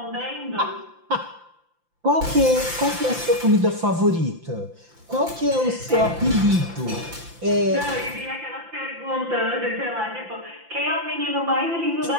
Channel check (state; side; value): late; left; 5.8 ms